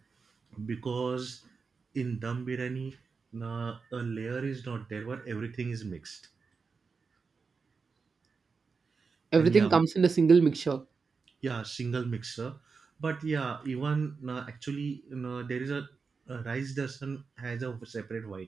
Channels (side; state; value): left; quieter; 4.9 dB